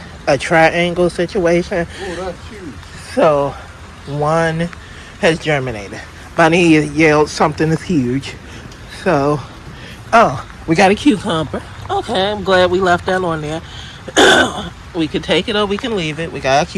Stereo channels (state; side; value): identical; both; correlation 1.00